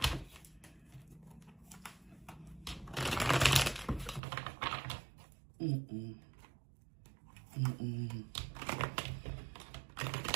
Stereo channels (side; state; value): left; drops out; at 4.2 s